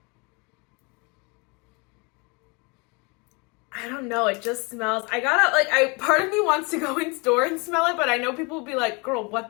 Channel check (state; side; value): quieter; right; 30.0 dB